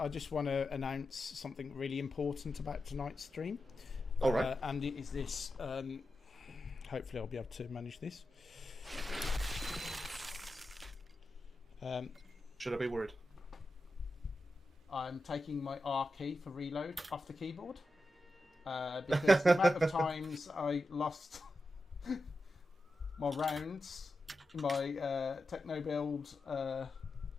just want to announce something really important about tonight's stream. All right. And it is this. Hopefully I'll be able to manage this. Should I be worried? I'm taking my R key for reload off the keyboard. Because the amount of times I lost my rounds in my techno build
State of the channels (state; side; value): normal; both; correlation 0.90